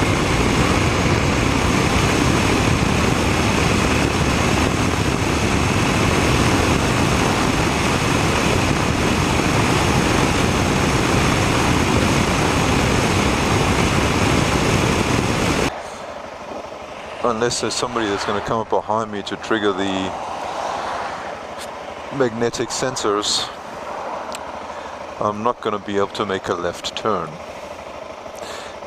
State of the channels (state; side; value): identical; both; correlation 1.00